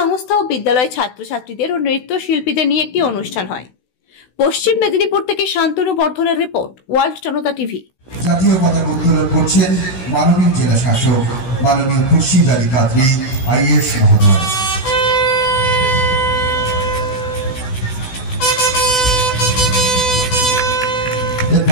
ও বিদ্যালয় ছাত্রছাত্রীদের ও নৃত্যশিল্পীদের নিয়ে একটি অনুষ্ঠান হয়। পশ্চিম মেদিনীপুর থেকে শান্তনু বর্ধনের রিপোর্ট, ওয়ার্ল্ড জনতা টিভি। জাতীয় পতাকা উত্তোলন করছেন মাননীয় জেলাশাসক মাননীয় খুরশেদ আলী কাদেরী আইএএস মহোদয়।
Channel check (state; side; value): late; right; 16 ms